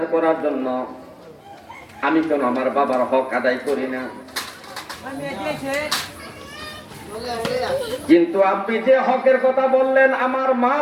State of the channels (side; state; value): both; identical; correlation 1.00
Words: করার জন্য। আমি কেন আমার বাবার হক আদায় করি না? কিন্তু আপনি যে হকের কথা বললেন, আমার মা